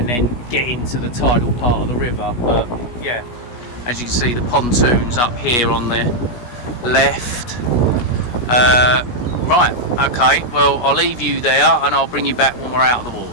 then get into the tidal part of the river. But yeah, as you can see, the pontoon's up here on the left. Right, okay, well, I'll leave you there and I'll bring you back when we're out of the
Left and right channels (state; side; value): late; right; 16 ms